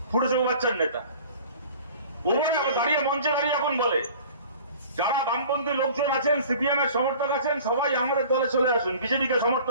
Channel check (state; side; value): inverted; both; correlation -0.46